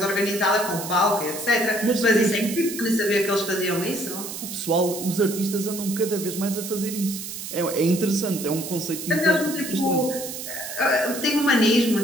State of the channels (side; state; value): right; noise; hiss, 8 dB below the sound